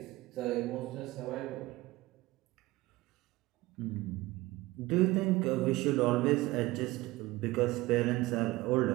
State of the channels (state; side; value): quieter; left; 19.5 dB